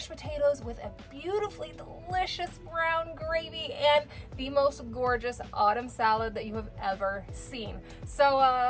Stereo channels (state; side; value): identical; both; correlation 1.00